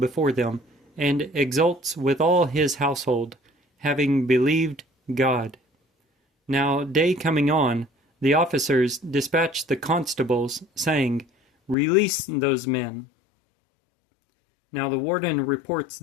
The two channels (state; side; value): drops out; right; at 11.8 s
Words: them, and exults with all his household, having believed God. Now day coming on, the officers dispatched the constables, saying, "Release those men." Now the warden reports